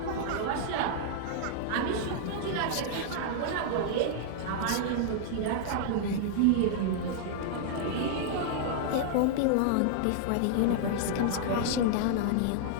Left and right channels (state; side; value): different; both; correlation -0.01